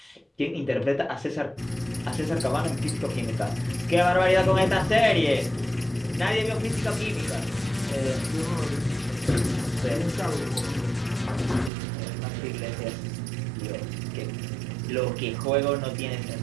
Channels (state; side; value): drops out; left; at 11.7 s